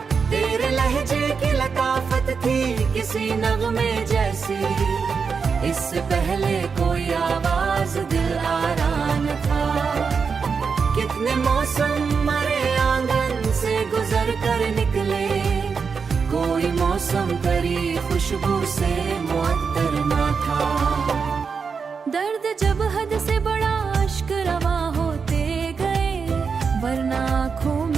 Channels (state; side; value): quieter; left; 5.6 dB